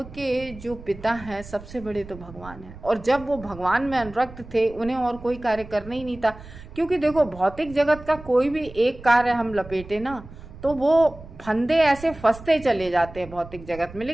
जो पिता हैं सबसे बड़े तो भगवान हैं, और जब वो भगवान में अनुरक्त थे उन्हें और कोई कार्य करना ही नहीं था। क्योंकि देखो, भौतिक जगत का कोई भी एक कार्य हम लपेटे ना, तो वो फंदे ऐसे फंसते चले जाते हैं भौतिक जगत में।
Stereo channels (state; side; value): noise; right; rumble, 17 dB below the sound